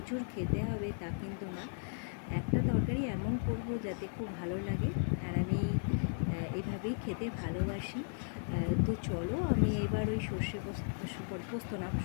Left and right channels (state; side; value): silent; right; 54 dB below the other